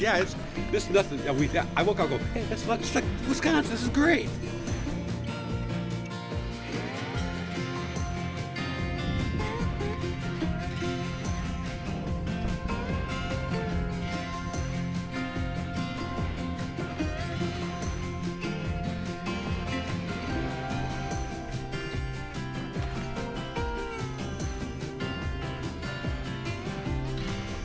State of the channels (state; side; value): identical; both; correlation 1.00